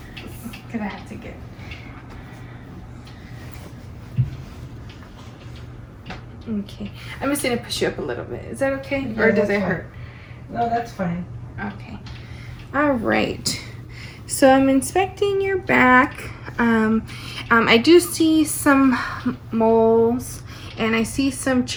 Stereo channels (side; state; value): both; identical; correlation 1.00